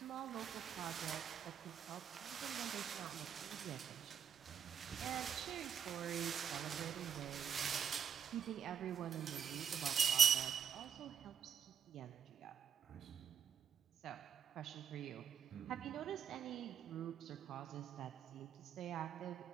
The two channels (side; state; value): left; quieter; 7.8 dB